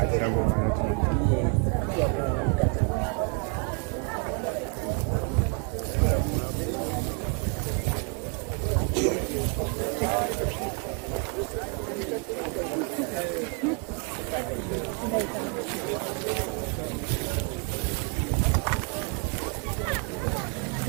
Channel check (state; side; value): quieter; left; 35.8 dB